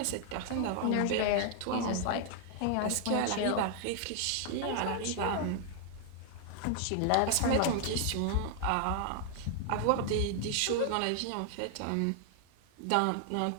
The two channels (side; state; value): both; different; correlation 0.00